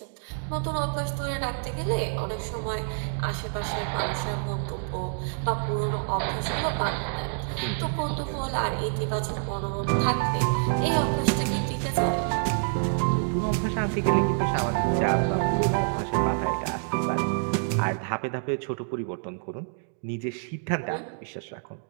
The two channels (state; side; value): silent; left; digital silence